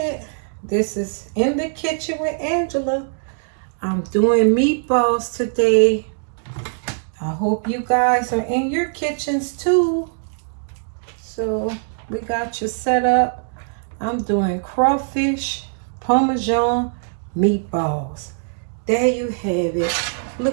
this is in the kitchen with Angela. I'm doing meatballs today. I hope you guys are in your kitchens too. So we got you set up. I'm doing crawfish Parmesan meatballs. There you have it.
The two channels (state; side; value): silent; left; digital silence